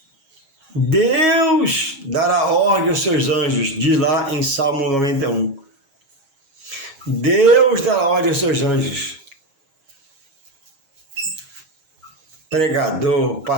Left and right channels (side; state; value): left; late; 7.3 ms